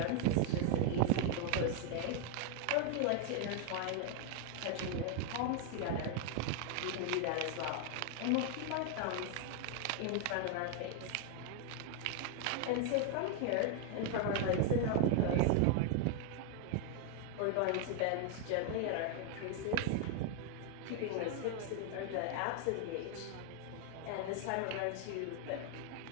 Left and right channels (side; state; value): both; different; correlation 0.00